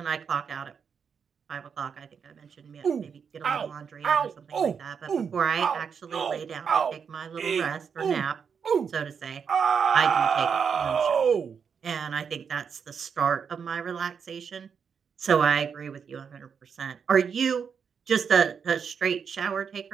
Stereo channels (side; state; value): left; quieter; 6.6 dB